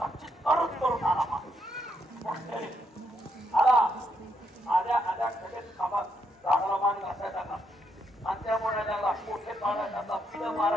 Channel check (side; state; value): both; normal; correlation 0.77